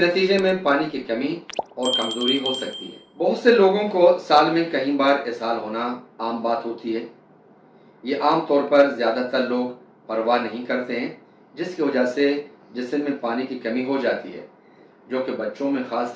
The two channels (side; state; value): both; identical; correlation 1.00